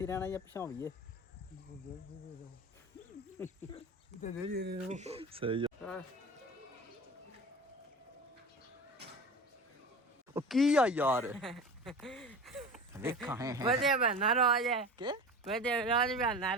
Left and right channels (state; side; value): normal; both; correlation 0.33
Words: ਰਹਿਣਾ ਜਾਂ ਪਛਾਵੀਏ ਸਹੀ ਉਹ ਕੀ ਆ ਯਾਰ ਵੇਖਾਂ ਹੈ ਵਧੀਆ ਬਣਾ ਰੋਜ ਹੈ ਕਿ ਵਧੀਆ ਰੋਜ ਬਣਾ